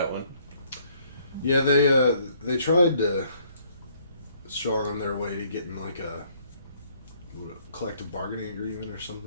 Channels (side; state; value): both; inverted; correlation -0.65